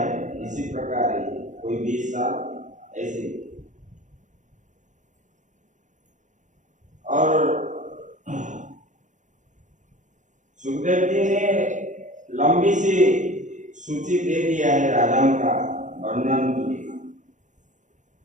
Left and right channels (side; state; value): left; late; 0.36 ms